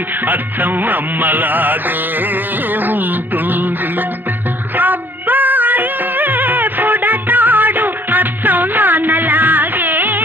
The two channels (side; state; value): left; late; 0.092 ms